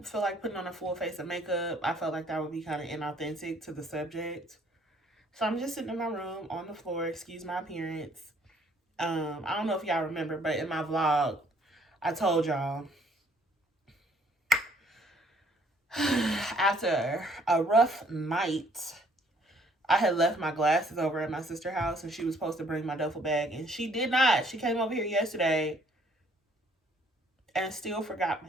feel like putting on a full face of makeup. I felt like that would be kind of inauthentic to the subject. So I'm just sitting in my room on the floor. Excuse my appearance. I don't know if y'all remember, but in my vlog, I told y'all after a rough night, I had left my glasses over at my sister's house and she was supposed to bring my duffel bag and she did not. She came over here yesterday and still forgot my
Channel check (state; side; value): normal; both; correlation 0.62